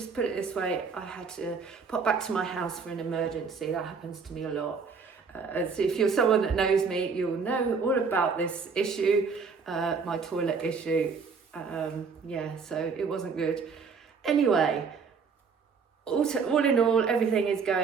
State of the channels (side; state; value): left; quieter; 5.4 dB